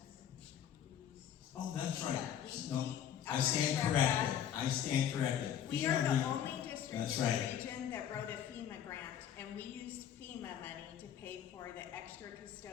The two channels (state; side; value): quieter; right; 9.7 dB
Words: Oh, that's right. No, I stand corrected. We are the only district That's in the right. region that wrote a FEMA grant, and we used FEMA money to pay for the extra